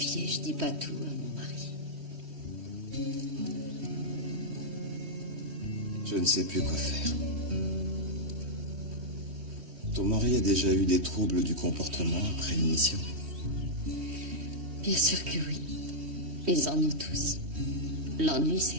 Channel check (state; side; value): late; left; 3.1 ms